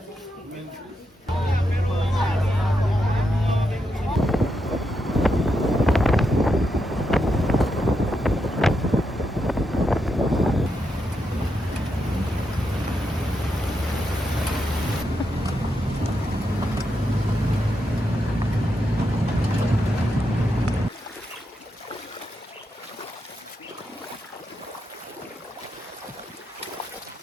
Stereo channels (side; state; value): both; normal; correlation 0.83